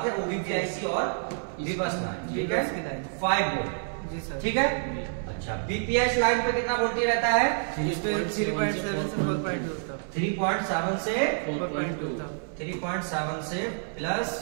है, ओबीपी आईसी और बीबस लाइन, ठीक है। 5 वोल्ट, जी सर, ठीक है। अच्छा, बीपीएच लाइन पे कितना वोल्टेज रहता है? 3.7 से 4.2 तक। 3.7 से 4.2 तक। 3.7 से प्लस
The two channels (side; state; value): left; silent; 59 dB below the other